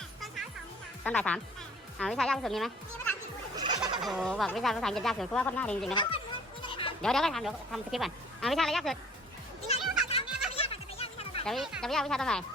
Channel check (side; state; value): both; normal; correlation 0.52